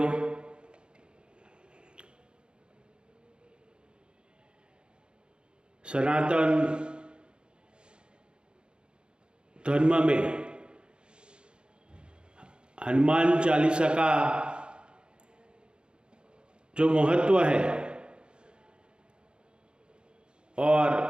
सनातन धर्म में हनुमान चालीसा का जो महत्व है और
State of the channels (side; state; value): left; late; 0.052 ms